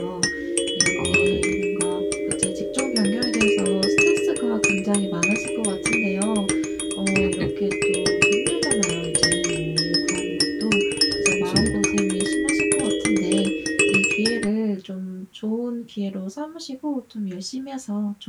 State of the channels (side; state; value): both; identical; correlation 1.00